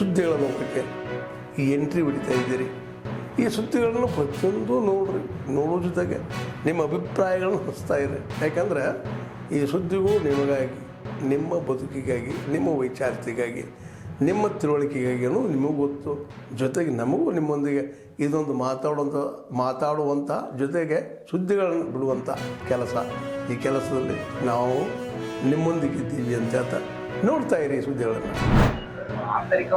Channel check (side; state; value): both; identical; correlation 1.00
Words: ಲೋಕಕ್ಕೆ ಎಂಟ್ರಿ ಹೊಡಿತಾ ಇದ್ದೀರಿ. ಈ ಸುದ್ದಿಗಳನ್ನು ಪ್ರತಿಯೊಂದು ನೋಡೋ ಜೊತೆಗೆ ನಿಮ್ಮ ಅಭಿಪ್ರಾಯಗಳನ್ನು ಹಂಚ್ತಾ ಇರಿ. ಯಾಕಂದರೆ ಈ ಸುದ್ದಿಗೂ ನಿಮಗಾಗಿ, ನಿಮ್ಮ ಬದುಕಿಗಾಗಿ, ನಿಮ್ಮ ವೈಚಾರಿಕೆಗಾಗಿ, ನಿಮ್ಮ ತಿಳುವಳಿಕೆಗಾಗಿಯೂ ನಿಮಗೂ ಗೊತ್ತು. ಜೊತೆಗೆ ನಮಗೂ ನಿಮ್ಮೊಂದಿಗೆ ಇದೊಂದು ಮಾತಾಡುವಂಥ ಜೊತೆಗೆ ಸುದ್ದಿಗಳನ್ನು ಬಿಡುವಂಥ ಕೆಲಸ. ಈ ಕೆಲಸದಲ್ಲಿ ನಾವು ನಿಮ್ಮೊಂದಿಗಿದ್ದೀವಿ ಅಂತ ಹೇಳ್ತಾ ನೋಡ್ತಾ ಇರಿ ಸುದ್ದಿಗಳನ್ನು.